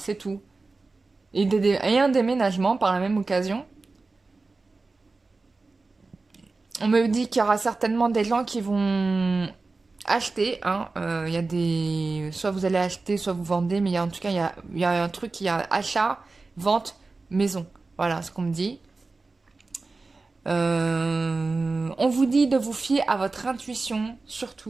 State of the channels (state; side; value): quieter; left; 3.7 dB